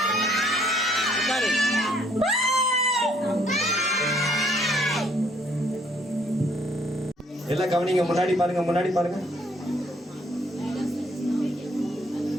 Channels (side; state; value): both; normal; correlation 0.65